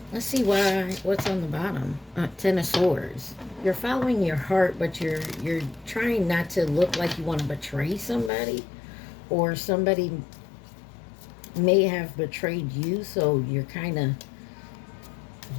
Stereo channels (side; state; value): right; drops out; at 8.3 s